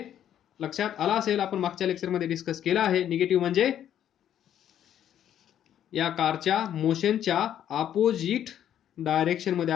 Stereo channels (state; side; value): quieter; right; 10.4 dB